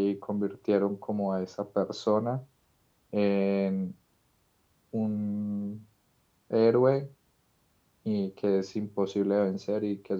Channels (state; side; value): identical; both; correlation 1.00